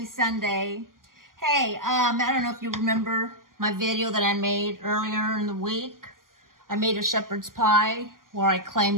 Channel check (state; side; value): late; left; 0.91 ms